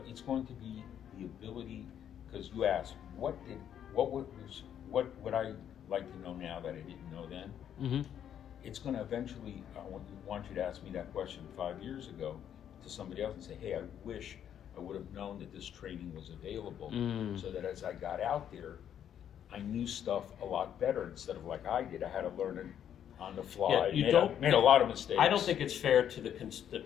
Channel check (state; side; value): quieter; right; 9.6 dB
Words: it's going to be the ability, because you asked, what would I like to know now that I didn't know then? It's going to eventually, I want you to ask me that question 5 years ago to somebody else and say, hey, I wish I would have known that this training was available, so that as I got out there, I knew stuff a lot better instead of like I did. I had to learn it on the fly. Made a lot of mistakes. I don't think it's fair to